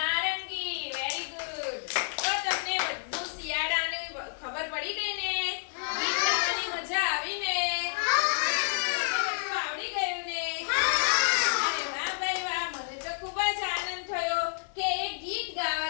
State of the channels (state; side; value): silent; right; digital silence